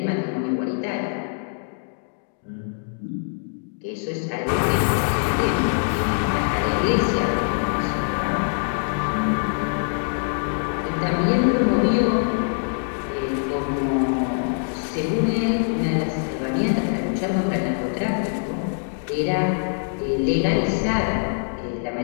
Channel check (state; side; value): silent; right; digital silence